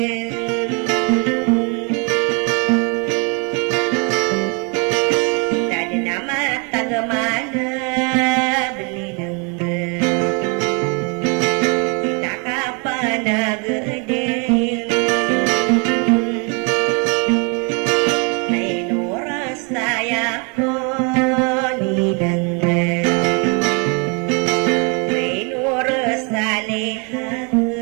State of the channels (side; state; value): left; quieter; 34.4 dB